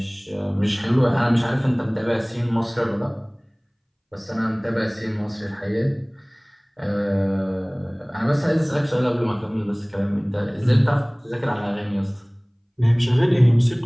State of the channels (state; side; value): identical; both; correlation 1.00